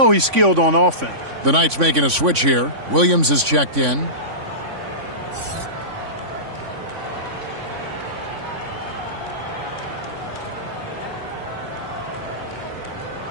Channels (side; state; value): left; late; 3.5 ms